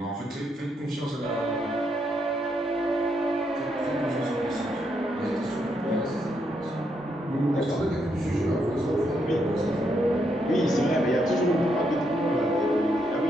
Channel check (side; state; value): both; normal; correlation 0.78